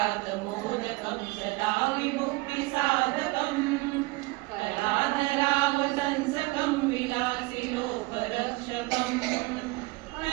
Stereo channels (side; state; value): left; quieter; 23.3 dB